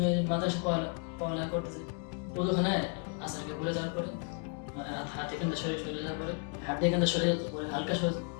মাদ্রাসা পড়ালেখা করতেছি। ওখানে আসারকে বলে যাওয়ার পরে মানে হাত এখান থেকে সরে যাওয়ার পরে হাত এখান থেকে সরে যাওয়ার পরে হালকা সরে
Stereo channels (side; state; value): right; quieter; 39.2 dB